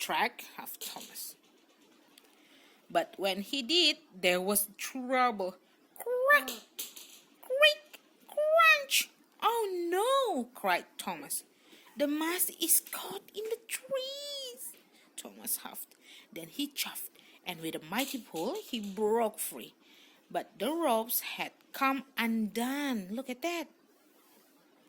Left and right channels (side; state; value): both; identical; correlation 1.00